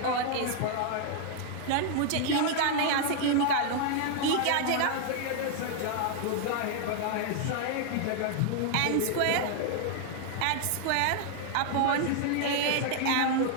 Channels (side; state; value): both; different; correlation 0.00